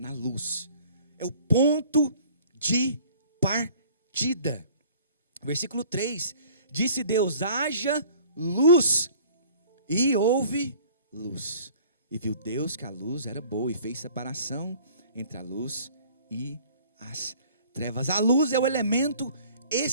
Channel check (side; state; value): both; inverted; correlation -0.51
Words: luz. É o ponto de partida. Versículo 3. Disse Deus, haja luz. E houve luz. E viu Deus que a luz era boa e fez separação entre a luz e as trevas. A luz é o elemento